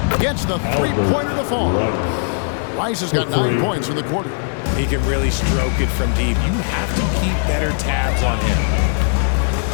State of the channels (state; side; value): silent; right; 67 dB below the other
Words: Gets the 3-pointer to fall. Rice has got 9 points in the quarter. He can really stroke it from deep. You have to keep better tabs on